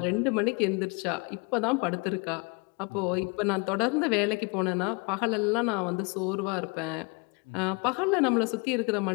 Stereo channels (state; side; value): quieter; right; 31.6 dB